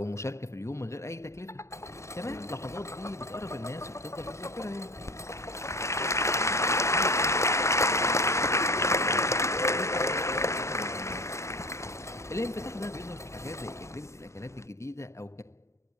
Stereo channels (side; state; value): right; late; 0.14 ms